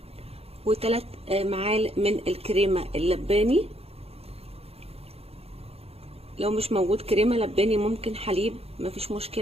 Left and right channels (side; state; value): left; late; 0.29 ms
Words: و3 معالق من الكريمه اللباني. لو مش موجود كريمه لباني ممكن حليب، مفيش